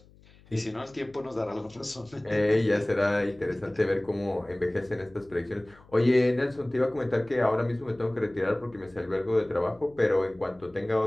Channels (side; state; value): left; noise; hum, 26 dB below the sound